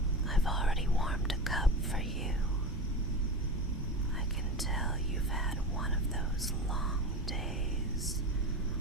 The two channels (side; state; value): both; normal; correlation 0.27